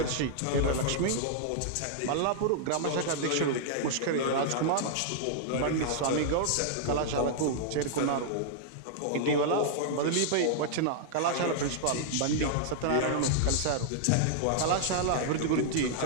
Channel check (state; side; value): different; both; correlation -0.01